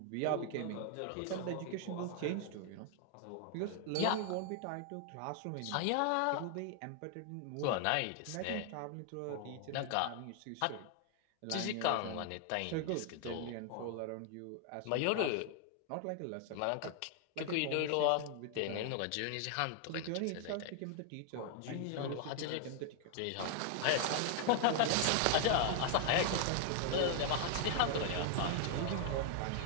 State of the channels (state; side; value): different; both; correlation 0.00